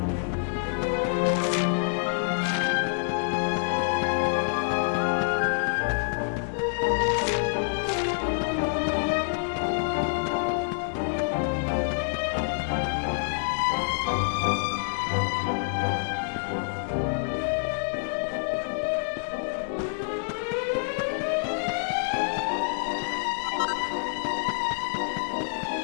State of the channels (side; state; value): right; silent; digital silence